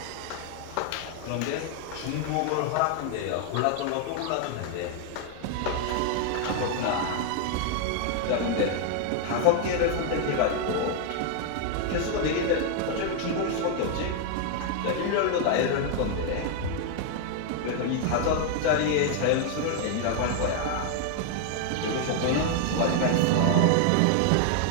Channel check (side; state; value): both; different; correlation 0.00